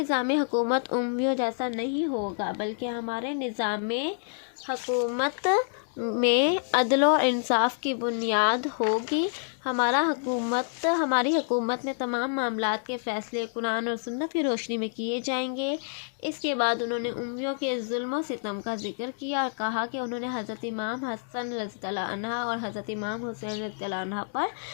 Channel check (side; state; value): right; silent; digital silence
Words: حکومت امویوں جیسا نہیں ہوگا بلکہ ہمارے نظام حکومت میں عدل و انصاف کی بنیاد ہوگی۔ ہماری حکومت میں تمام معاملات کے فیصلے قرآن اور سنت کی روشنی میں کیے جائیں گے۔ اس کے بعد انہوں نے امویوں کے ظلم و ستم کا ذکر کیا اور کہا کہ انہوں نے حضرت امام حسن رضی اللہ عنہ اور حضرت امام حسین رضی اللہ عنہ پر